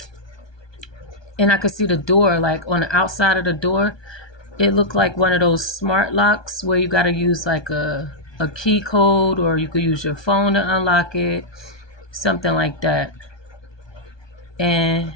I could see the door, like on the outside of the door, it looked like one of those smart locks where you got to use like a key code, or you could use your phone to unlock it, something like that. And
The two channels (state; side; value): late; right; 1.2 ms